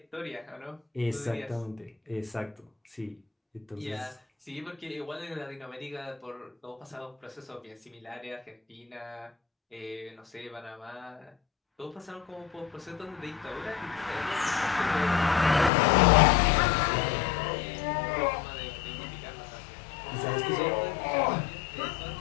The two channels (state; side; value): drops out; right; at 15.7 s